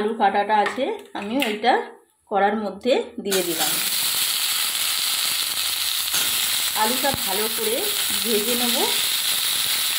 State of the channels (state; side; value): identical; both; correlation 1.00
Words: কাটাটা আছে, আমি ওইটা কড়ার মধ্যে দিয়ে দিলাম। আলুটা ভালো করে ভেজে নেব।